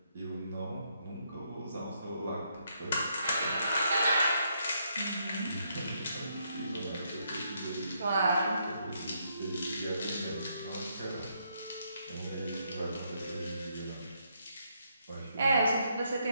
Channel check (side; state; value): both; inverted; correlation -0.75